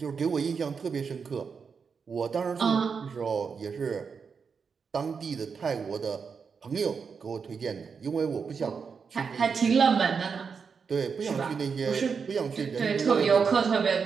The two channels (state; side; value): quieter; left; 5.8 dB